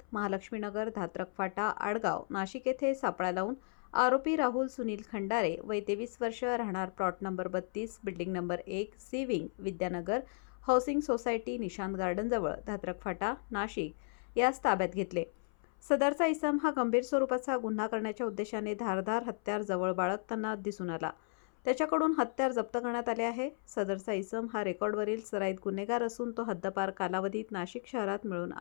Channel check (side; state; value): right; silent; 55 dB below the other